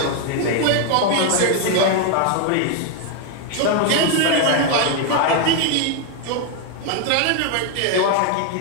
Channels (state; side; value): different; both; correlation 0.01